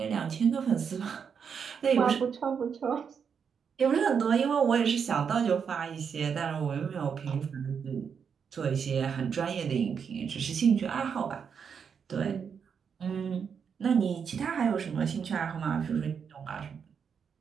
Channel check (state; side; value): quieter; left; 6.8 dB